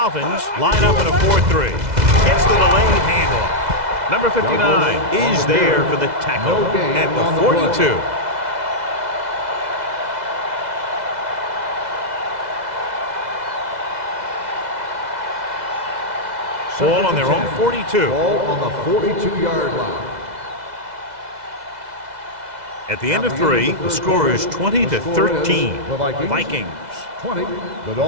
line up in a 4-3. Gets the delayed handoff. Number 59 is there for the tackle at the 42. Ball on their own 42. Ball on the 42-yard line. At the end of 3, the score is 20-13. The Vikings. 20. The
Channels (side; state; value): left; late; 2.0 ms